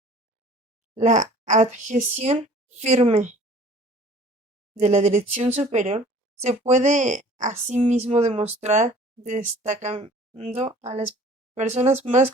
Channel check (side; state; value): both; normal; correlation 0.49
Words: La adhesión firme de la dirección superior se puede asimismo demostrar destacando a las personas más